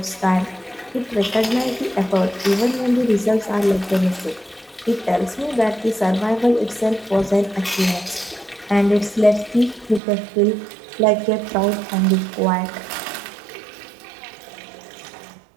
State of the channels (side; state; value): left; drops out; at 10.0 s